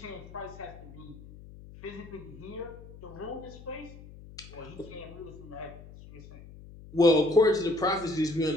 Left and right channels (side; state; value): left; noise; hum, 17 dB below the sound